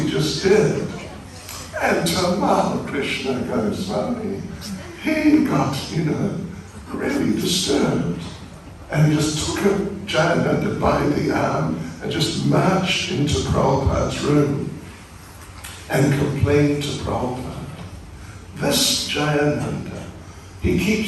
just did. And Tamal Krishna Goswami, he got, really disturbed. And he just took Jayananda by the arm and just marched into Prabhupada's room and complained to Prabhupada. This Jayananda, he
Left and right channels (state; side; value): identical; both; correlation 1.00